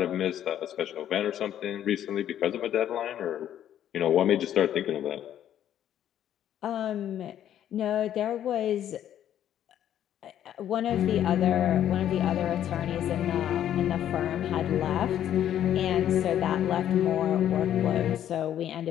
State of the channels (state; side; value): quieter; right; 10.8 dB